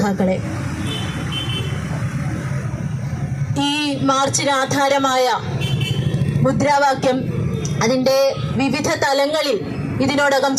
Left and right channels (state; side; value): identical; both; correlation 1.00